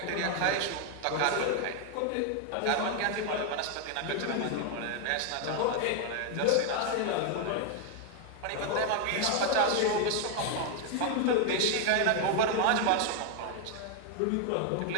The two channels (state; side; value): different; both; correlation 0.00